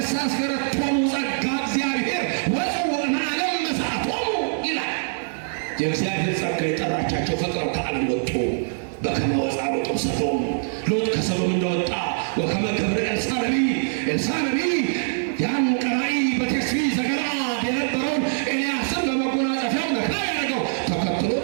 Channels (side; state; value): left; silent; digital silence